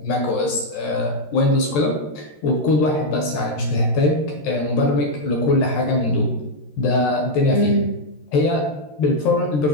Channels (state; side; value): late; right; 13 ms